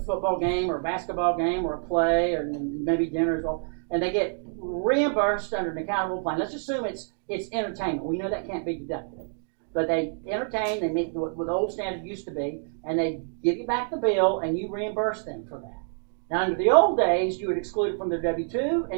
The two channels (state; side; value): silent; left; 60 dB below the other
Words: football game or a basketball game or a play or maybe dinner as well, and they get reimbursed under an accountable plan. Let's assume it's entertainment. We know that can't be deducted. But they entertain, they meet what the old standard used to be, and they give you back the bill, and you reimburse them for that. Now, under the old days, you would exclude it from their W-2